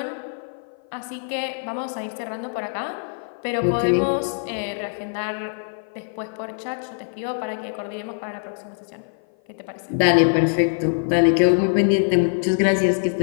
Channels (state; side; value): silent; right; 55 dB below the other